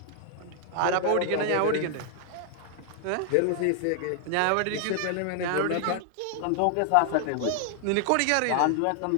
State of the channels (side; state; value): both; different; correlation 0.00